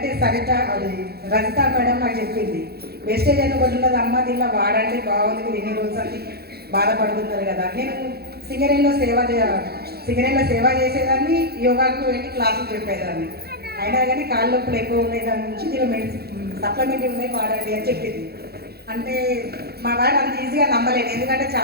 సరిత రజిత మేడం నాకు చెప్పింది, వేస్టేజ్ ఎన్నుకుంటున్నది అమ్మ, దీనిలో వాడండి, బాగుంది, మీరు ఎన్ని రోజులు అని బాధపడుతున్నారు కదా. నేను సింగరేణిలో సేవ చేసేదాన్ని, యోగాకు వెళ్ళి క్లాసులు చెప్పేదాన్ని. అయినా కానీ కాళ్ళ నొప్పులు ఎక్కువ ఉన్నాయి, దాని నుంచి దీనిలో సప్లిమెంట్ ఉన్నాయి, వాడండి అని చెప్పింది. అంటే మా వాడు అంత ఈజీగా నమ్మలేదు, ఎందుకంటే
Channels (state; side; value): late; left; 0.46 ms